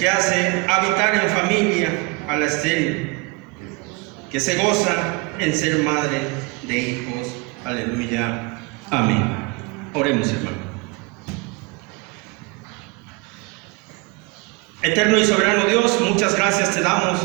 hace habitar en familia a la estéril, que se goza en ser madre de hijos. Aleluya. Amén. Oremos, hermano. Eterno y soberano Dios, muchas gracias te damos.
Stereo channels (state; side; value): quieter; left; 27.4 dB